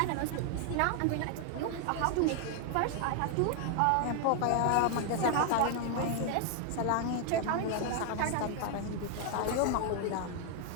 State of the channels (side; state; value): both; different; correlation 0.00